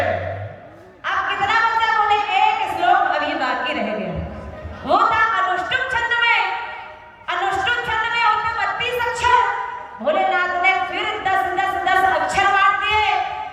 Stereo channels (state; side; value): identical; both; correlation 1.00